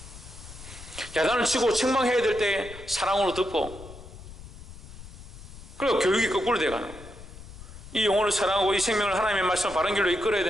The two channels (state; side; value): noise; left; rumble, 15 dB below the sound